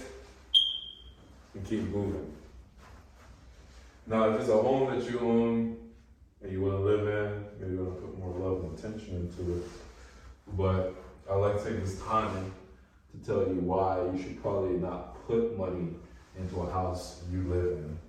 and keep moving. Now, if it's a home that you own and you want to live in, maybe you want to put more love and attention into it. But I like to take this time to tell you why you should probably not put money into a house you live in,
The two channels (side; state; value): both; identical; correlation 1.00